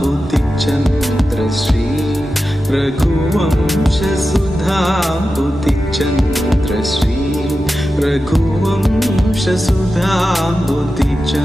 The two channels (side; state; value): both; normal; correlation 0.92